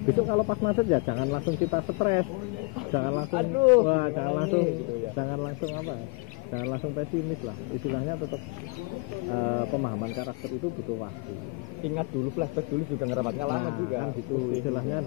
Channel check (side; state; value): right; quieter; 31.3 dB